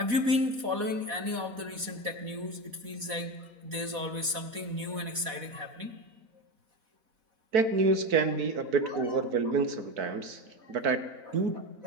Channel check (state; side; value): late; left; 4.1 ms